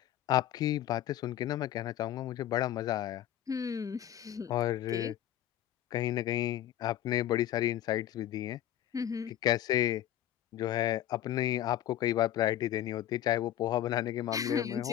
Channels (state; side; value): quieter; right; 12.0 dB